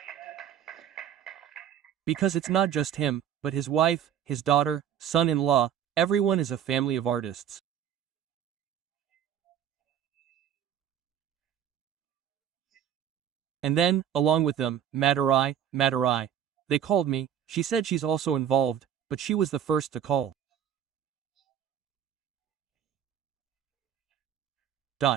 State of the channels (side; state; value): left; quieter; 9.5 dB